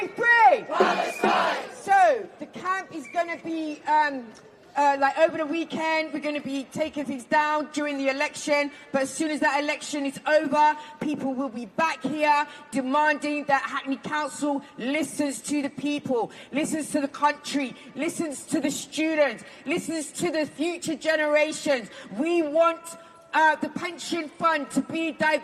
free! Palestine! So the camp is going to be like over the weekend, we're going to be taking things down during the election, but as soon as that election is over, people will be back here demanding that Hackney Council listens to the people, listens to the country, listens to the students, listens to the future generations. We want the pension fund to be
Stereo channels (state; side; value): identical; both; correlation 1.00